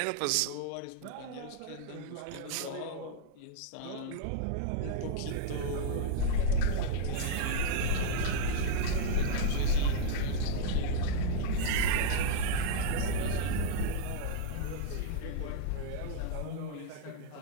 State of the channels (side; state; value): both; different; correlation -0.01